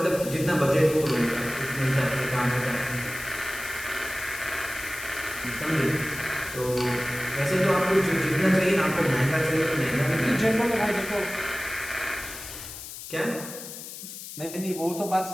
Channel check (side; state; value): left; noise; hiss, 11 dB below the sound